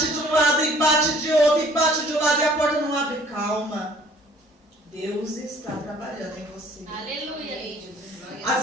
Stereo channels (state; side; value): normal; both; correlation 0.56